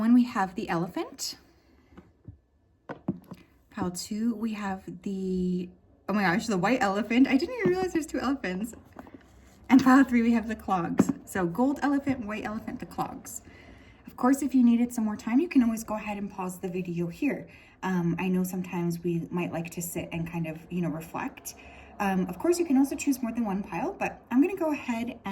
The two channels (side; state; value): both; identical; correlation 1.00